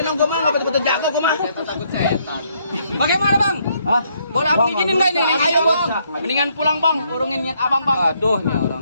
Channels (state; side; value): inverted; both; correlation -0.71